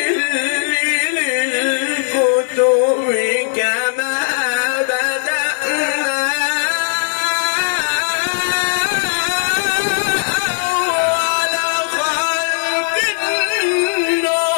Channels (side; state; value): right; silent; 59 dB below the other